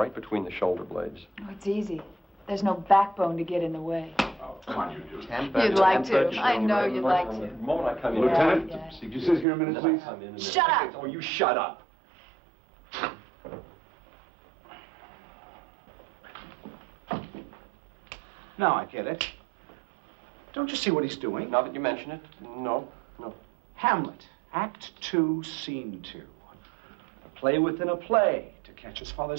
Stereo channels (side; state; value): left; drops out; at 9.5 s